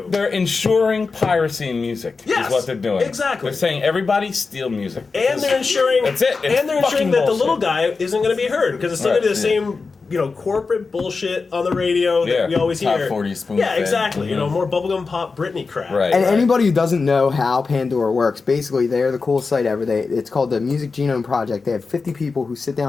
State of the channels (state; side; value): quieter; right; 4.4 dB